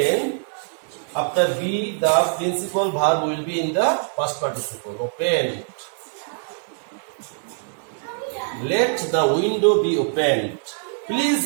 after be, the principal verb will be in the past participle. Opened. Let the window be opened. Please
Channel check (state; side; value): silent; left; digital silence